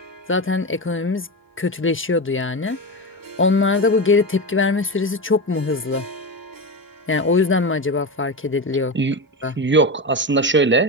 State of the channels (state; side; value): normal; both; correlation 0.19